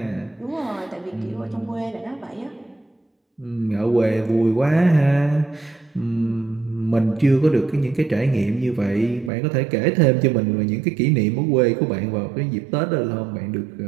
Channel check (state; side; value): drops out; left; at 9.3 s